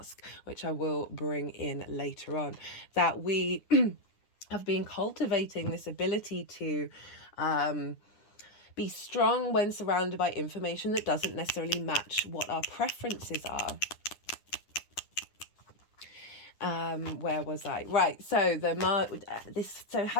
which I will bring in later on, that we have been cultivating this ability to be strong when surrounded by information that doesn't necessarily match what our preferences are. Where was I? Right. So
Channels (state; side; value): late; right; 9.8 ms